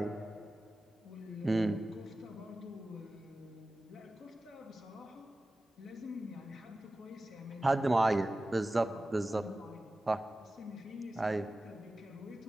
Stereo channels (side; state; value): both; normal; correlation 0.95